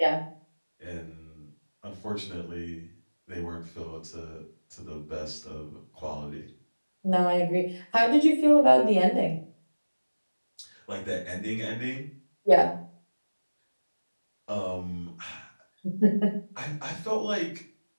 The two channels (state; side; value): inverted; both; correlation -1.00